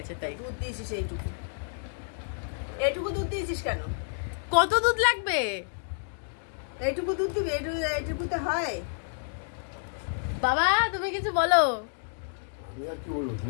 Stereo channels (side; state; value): right; silent; 58 dB below the other